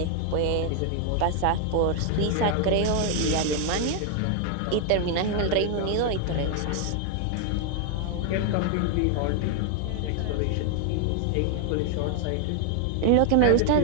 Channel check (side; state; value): both; different; correlation 0.00